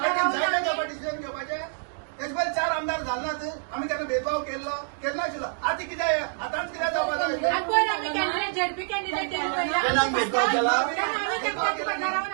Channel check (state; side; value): silent; left; 59 dB below the other